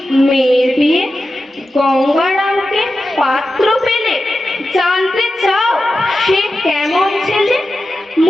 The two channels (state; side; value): normal; both; correlation 0.92